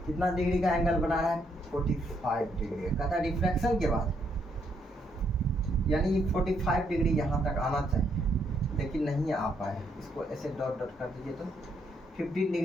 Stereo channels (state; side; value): normal; both; correlation 0.74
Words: कितना डिग्री का एंगल बना रहा है, 45 डिग्री। कहता है रिफ्लेक्शन के बाद यानी 45 डिग्री यहाँ तक आना चाहिए, लेकिन नहीं आ पाया। इसको ऐसे डॉट डॉट कर दीजिए तो 15